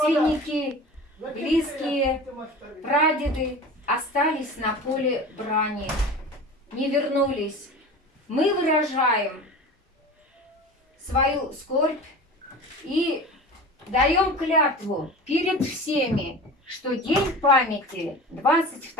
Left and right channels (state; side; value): normal; both; correlation 0.35